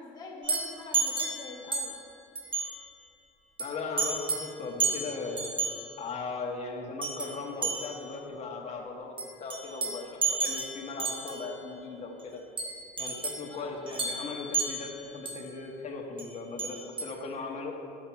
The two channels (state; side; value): normal; both; correlation 0.03